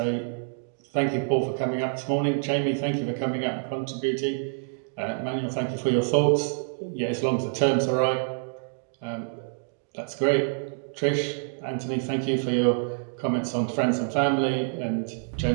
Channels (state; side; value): silent; left; digital silence